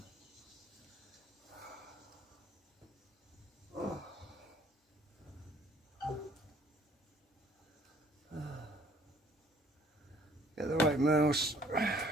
Get the right mouse.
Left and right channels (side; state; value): both; normal; correlation 0.59